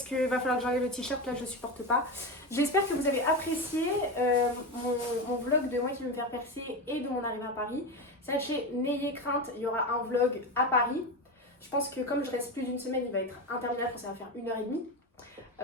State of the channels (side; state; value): both; normal; correlation 0.19